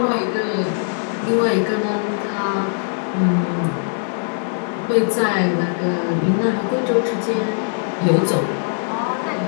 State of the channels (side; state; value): right; silent; digital silence